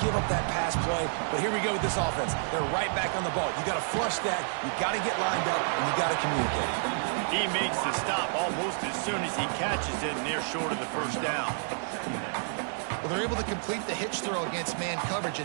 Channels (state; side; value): silent; left; digital silence